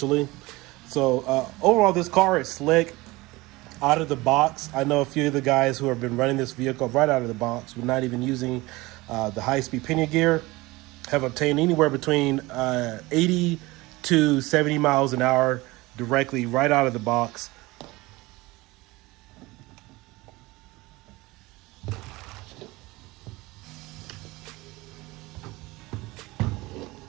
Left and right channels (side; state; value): left; quieter; 21.3 dB